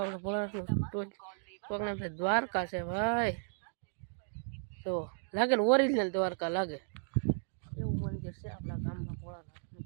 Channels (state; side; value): silent; left; digital silence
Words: ભોળાનું કોકના દ્વારકા છે ભાઈ તો લાગે ને ઓરિજિનલ દ્વારકા લાગે એવું મંદિર છે આપણા ગામમાં ભોળાનાથનું